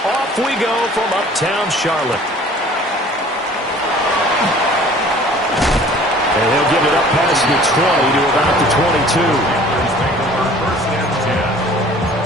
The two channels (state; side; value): normal; both; correlation 0.50